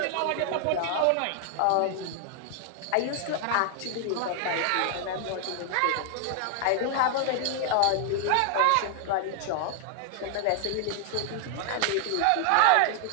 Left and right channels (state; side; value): different; both; correlation 0.00